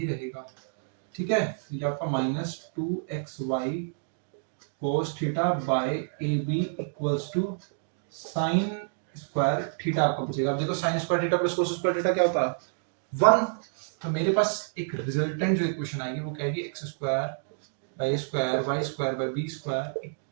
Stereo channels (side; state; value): left; silent; digital silence